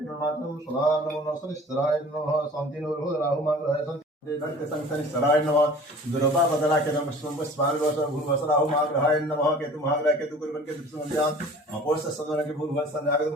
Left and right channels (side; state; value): both; normal; correlation 0.45